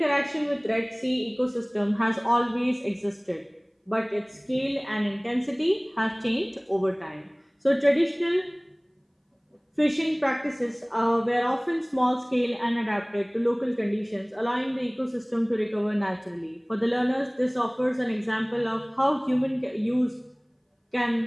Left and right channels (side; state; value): both; identical; correlation 1.00